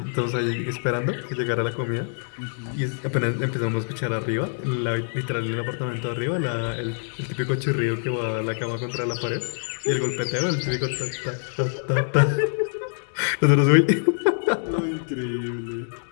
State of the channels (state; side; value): silent; right; digital silence